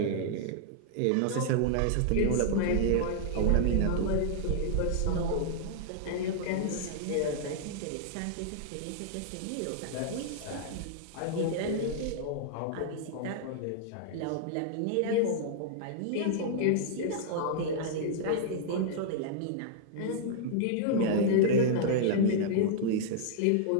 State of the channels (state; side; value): different; both; correlation -0.01